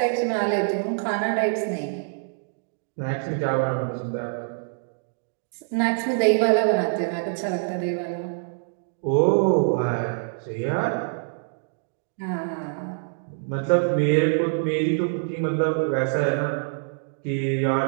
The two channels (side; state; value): left; silent; digital silence